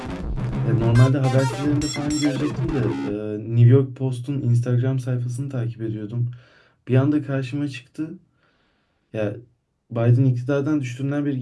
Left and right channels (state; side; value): identical; both; correlation 1.00